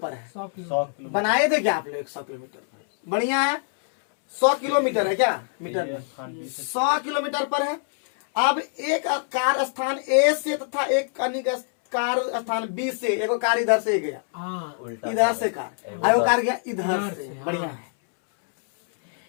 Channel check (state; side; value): silent; right; 62 dB below the other